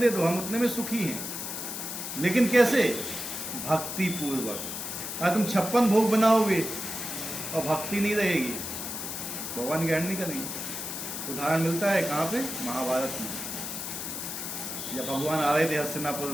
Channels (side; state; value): left; noise; hiss, 5 dB below the sound